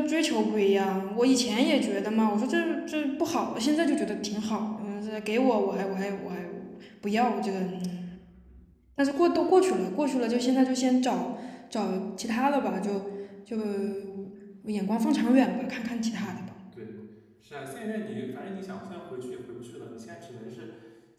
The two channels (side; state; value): both; identical; correlation 1.00